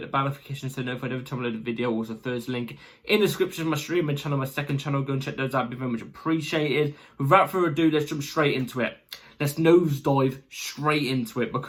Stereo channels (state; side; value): identical; both; correlation 1.00